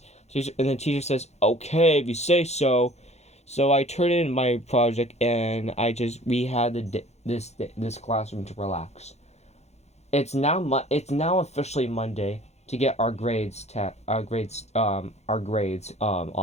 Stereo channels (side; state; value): right; late; 0.32 ms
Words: And the teacher says, "Okay, if you say so." So I turned in my project and we had this classroom to relax. It's now officially Monday to get our grades on